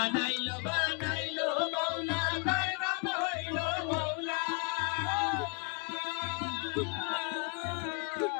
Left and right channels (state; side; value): quieter; right; 35.1 dB